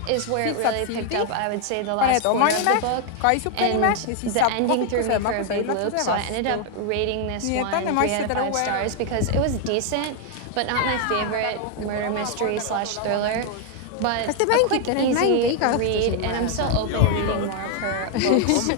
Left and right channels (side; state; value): both; different; correlation 0.00